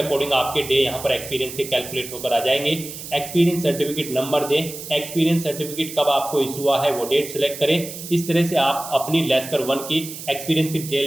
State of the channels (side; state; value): right; noise; hiss, 11 dB below the sound